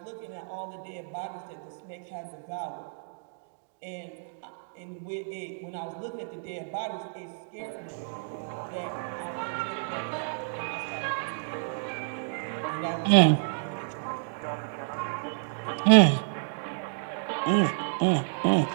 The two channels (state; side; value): silent; left; digital silence